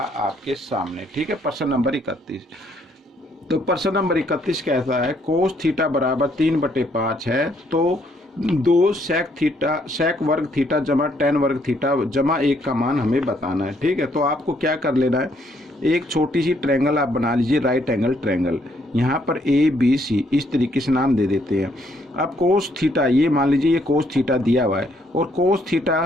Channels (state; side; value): normal; both; correlation 0.70